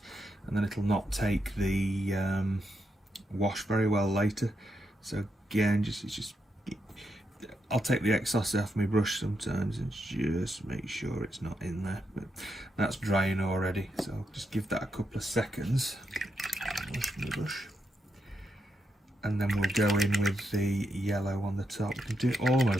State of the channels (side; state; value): both; normal; correlation 0.83